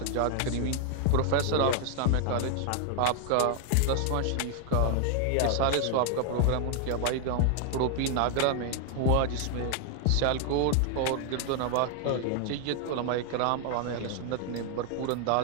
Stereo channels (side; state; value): both; different; correlation 0.00